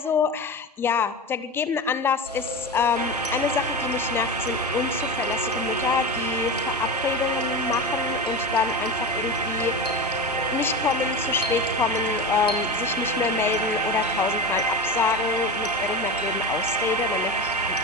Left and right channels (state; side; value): normal; both; correlation 0.24